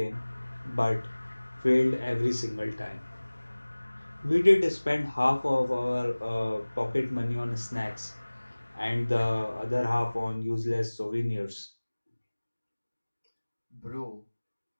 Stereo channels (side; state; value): both; inverted; correlation -1.00